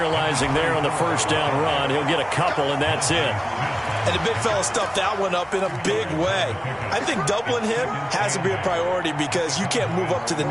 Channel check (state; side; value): identical; both; correlation 1.00